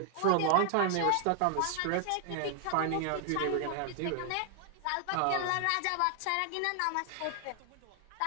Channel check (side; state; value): both; different; correlation 0.00